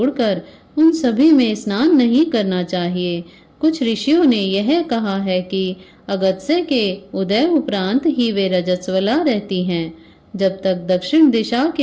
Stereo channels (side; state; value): both; identical; correlation 1.00